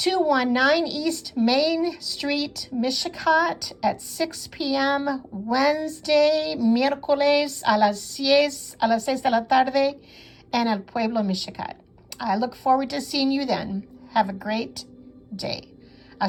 East Main Street, Michigan at 6 p.m. Wednesday, miércoles a las 6 de la tarde en El Pueblo, Michigan. I look forward to seeing you then. Have a great day.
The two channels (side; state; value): both; identical; correlation 1.00